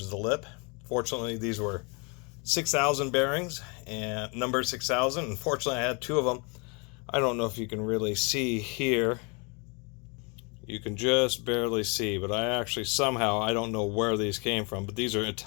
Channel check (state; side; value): quieter; right; 32.3 dB